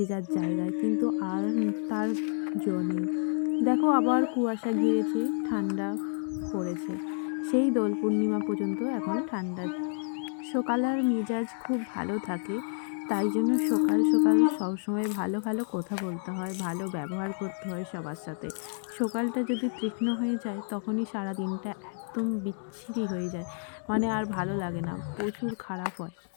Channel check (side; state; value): right; silent; 58 dB below the other